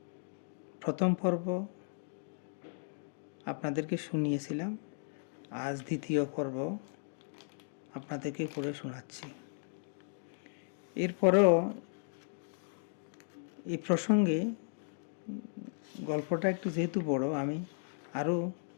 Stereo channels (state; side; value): silent; right; digital silence